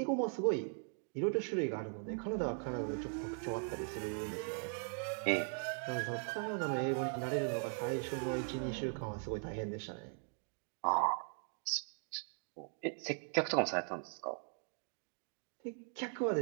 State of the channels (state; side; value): silent; left; 51 dB below the other